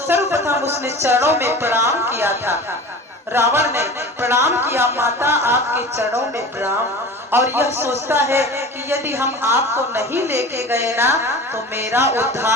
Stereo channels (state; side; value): normal; both; correlation 0.36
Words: उसने चरणों में प्रणाम किया था। रावण ने प्रणाम किया, माता आपके चरणों में प्रणाम। और यह सोचता है कि यदि हम आपको नहीं लेके गए ना तो मेरा